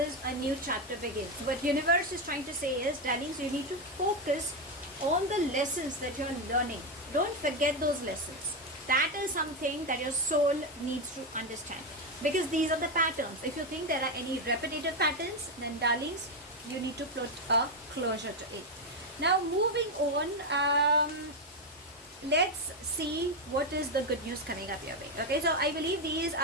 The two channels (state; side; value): normal; both; correlation 0.08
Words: a new chapter begins. What universe is trying to say is, darlings, you need to focus on the lessons that you're learning. Don't forget those lessons. That is something that your soul needs to understand. because these are the patterns. If you think there are any repetitive patterns, then darlings, you need to put a closure to it. Now moving on, let's see what is the good news coming up your way. Okay, so I believe these